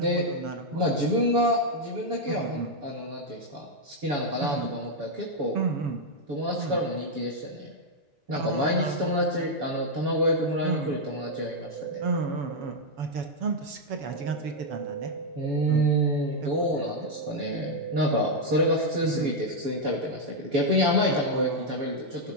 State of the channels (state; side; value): late; left; 7.0 ms